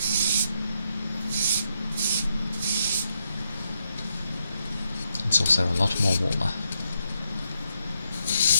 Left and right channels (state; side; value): inverted; both; correlation -0.80